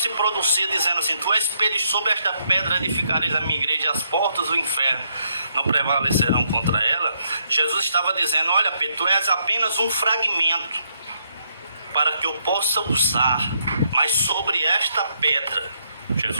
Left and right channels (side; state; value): both; inverted; correlation -0.75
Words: se pronuncia dizendo assim: tu és Pedro, e sobre esta pedra edificareis a minha igreja, e as portas do inferno não prevalecerão contra ela, Jesus estava dizendo: olha Pedro, tu és apenas um fragmento para que eu possa usar, mas sobre esta pedra,